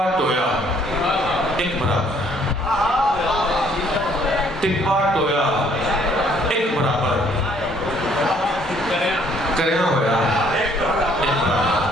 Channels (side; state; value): both; normal; correlation 0.63